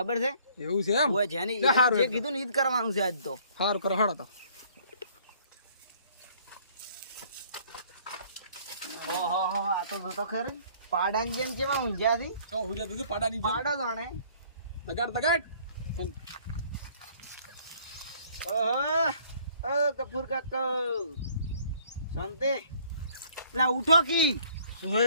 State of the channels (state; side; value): inverted; both; correlation -0.58